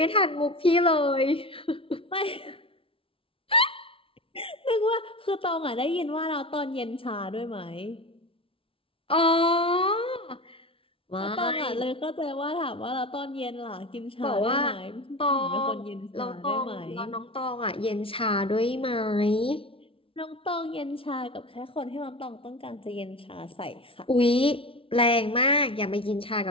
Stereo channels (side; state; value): right; late; 0.26 ms